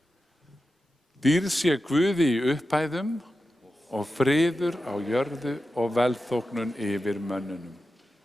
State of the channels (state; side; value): normal; both; correlation 0.91